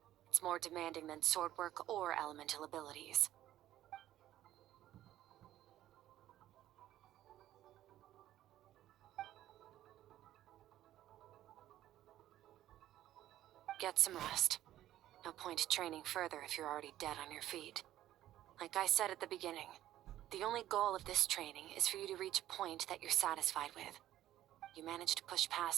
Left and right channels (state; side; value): quieter; left; 13.3 dB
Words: it's more demanding than sword work or elemental abilities. Get some rest. No point training further if you're already dead on your feet. Like I said at the beginning, the only goal of this training is for you to reach a point that you're satisfied with. You managed to push